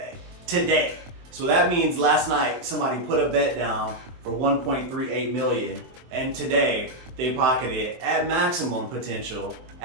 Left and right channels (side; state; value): left; late; 23 ms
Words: today. So that means last night somebody put a bet down for $1.38 million, and today they pocketed at maximum potential